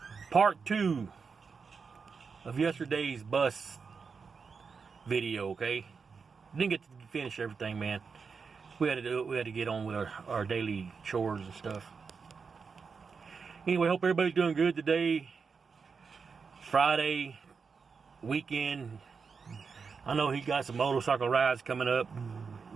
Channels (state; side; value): quieter; left; 5.4 dB